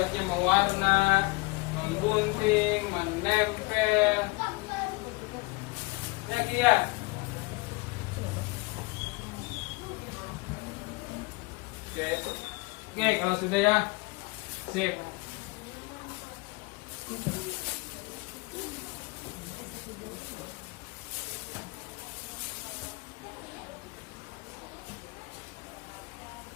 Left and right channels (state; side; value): quieter; right; 26.5 dB